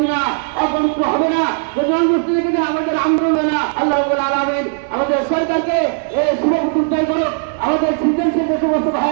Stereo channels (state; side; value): silent; left; digital silence